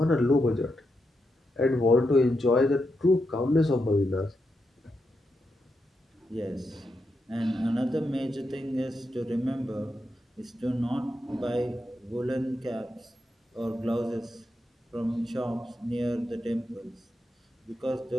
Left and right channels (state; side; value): normal; both; correlation 0.85